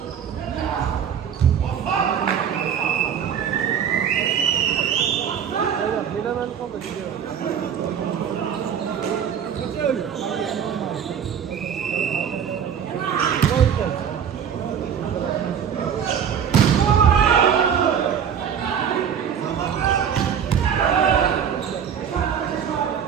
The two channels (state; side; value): quieter; left; 8.1 dB